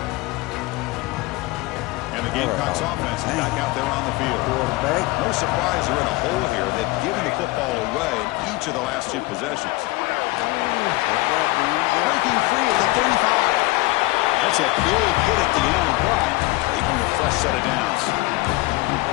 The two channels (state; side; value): quieter; right; 21.3 dB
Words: And the Gamecocks offense is back out there on the field. No surprise they're in a hole here. They've given the football away in each of the last 2 possessions. Breaking free at the 35. That's a big hit at the end, but even a fresh set of downs.